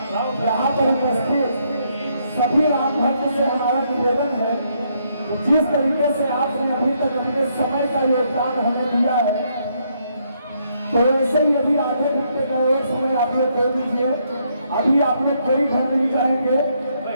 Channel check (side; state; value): both; inverted; correlation -0.74